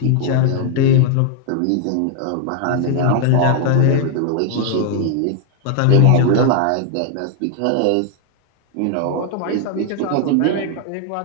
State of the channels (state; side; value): different; both; correlation 0.00